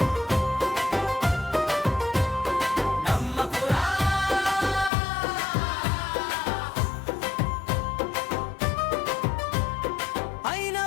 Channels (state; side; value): drops out; right; at 4.9 s